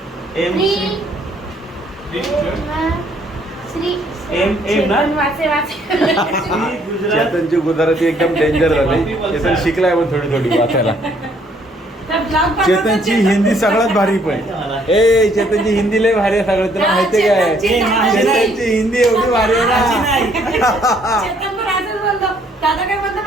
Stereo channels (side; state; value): both; normal; correlation 0.65